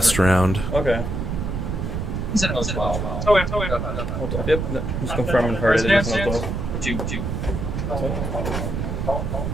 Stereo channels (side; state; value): right; noise; rumble, 2 dB below the sound